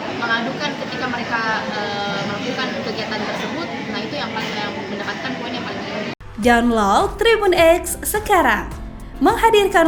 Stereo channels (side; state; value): both; identical; correlation 1.00